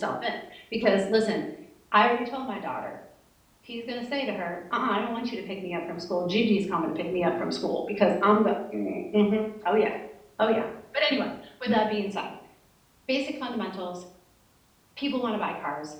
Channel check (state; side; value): identical; both; correlation 1.00